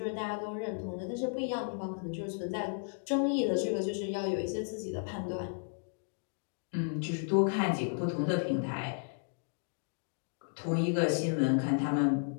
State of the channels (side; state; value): right; silent; 55 dB below the other